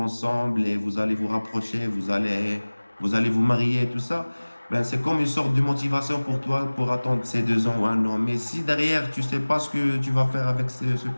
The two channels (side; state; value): both; inverted; correlation -1.00